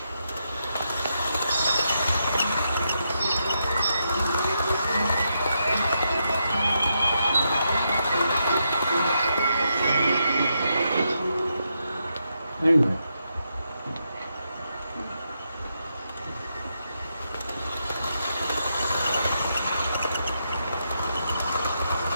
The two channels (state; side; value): inverted; both; correlation -0.82